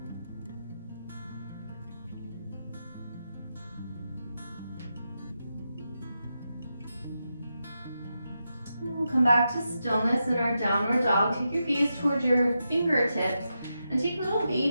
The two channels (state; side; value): inverted; both; correlation -0.87